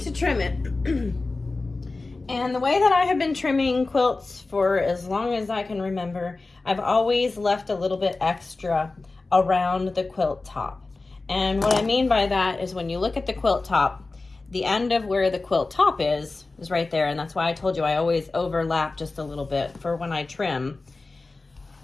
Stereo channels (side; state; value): right; quieter; 3.5 dB